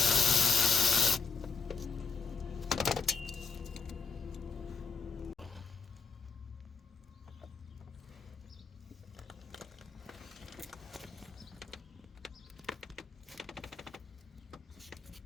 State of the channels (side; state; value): right; quieter; 5.2 dB